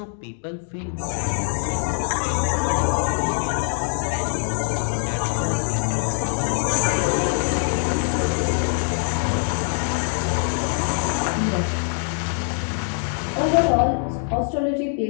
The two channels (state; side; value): silent; right; 60 dB below the other